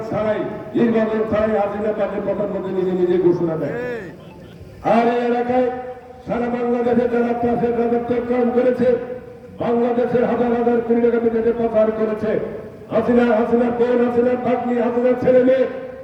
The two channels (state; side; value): identical; both; correlation 1.00